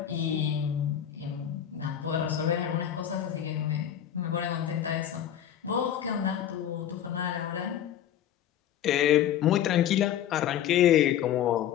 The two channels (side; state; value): right; quieter; 10.4 dB